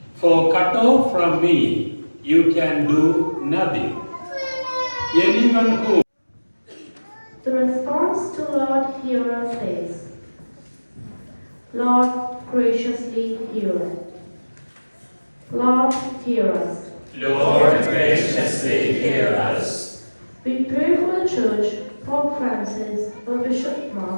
For cut off from me, you can do nothing. Anyone who The response to Lord hear us is, Lord graciously hear us. Lord hear us. Lord graciously hear us. We pray for the Church, Pope Francis, for Bishop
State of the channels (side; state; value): both; inverted; correlation -1.00